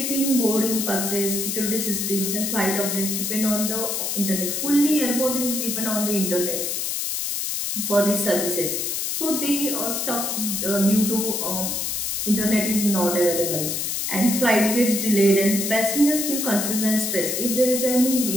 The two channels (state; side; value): noise; left; hiss, 1 dB below the sound